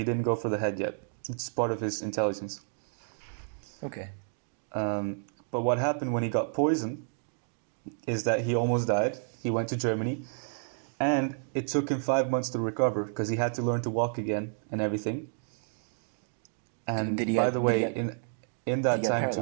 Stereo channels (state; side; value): silent; left; digital silence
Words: didn't go for the head yet. It's part of his intelligence. Okay. But what happened when he got poisoned is that he almost died. He went to Germany. And it took him 5 months to recover because he had to learn to walk again and everything. And by the way, in that time to